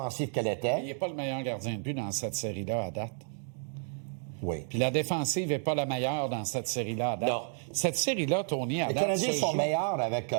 qu'elle était. Il n'est pas le meilleur gardien de but dans cette série-là à date. Oui. Puis la défensive n'est pas la meilleure dans cette série-là à date. Non. Cette série-là, Tony, à date, les Canadiens sont meilleurs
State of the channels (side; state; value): left; silent; 57 dB below the other